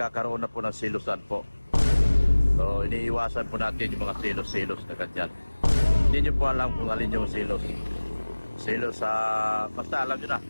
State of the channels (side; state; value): both; inverted; correlation -1.00